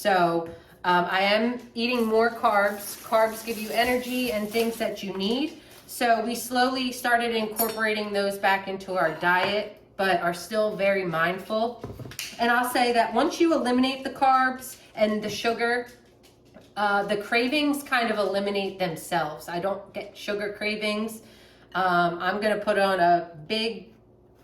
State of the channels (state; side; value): identical; both; correlation 1.00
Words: I am eating more carbs. Carbs give you energy and things that you need. So we slowly started incorporating those back into our diet, but are still very mindful. And I'll say that once you eliminate the carbs and the sugar, the cravings kind of eliminate themselves. I don't get sugar cravings. I'm going to put on a big